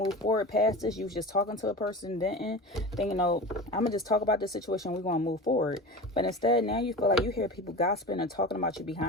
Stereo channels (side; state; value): both; normal; correlation 0.31